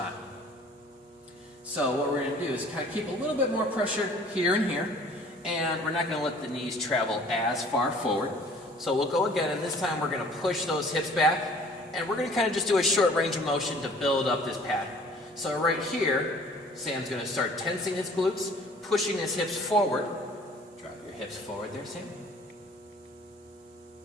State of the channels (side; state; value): both; normal; correlation 0.52